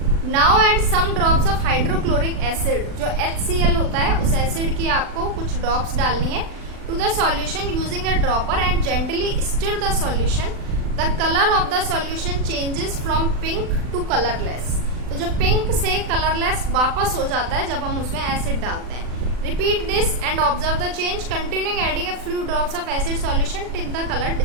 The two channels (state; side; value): late; left; 40 ms